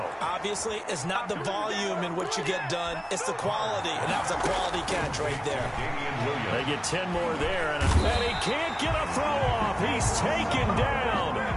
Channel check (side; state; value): both; identical; correlation 1.00